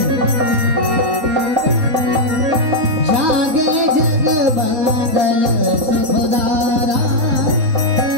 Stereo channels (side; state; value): left; late; 3.8 ms